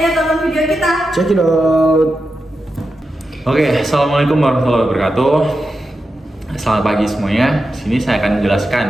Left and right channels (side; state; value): both; normal; correlation 0.89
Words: tonton video kita. Check it out. Oke, assalamualaikum warahmatullahi wabarakatuh. Selamat pagi semuanya. Sini saya akan